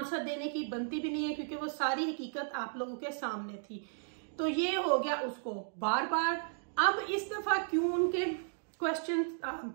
देने की बनती भी नहीं है, क्योंकि वो सारी हकीकत आप लोगों के सामने थी। तो ये हो गया उसको बार बार। अब इस दफा क्यों उनके क्वेश्चन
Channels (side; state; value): left; silent; digital silence